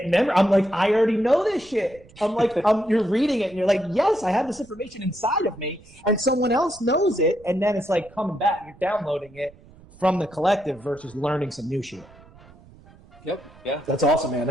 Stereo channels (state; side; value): noise; right; rumble, 24 dB below the sound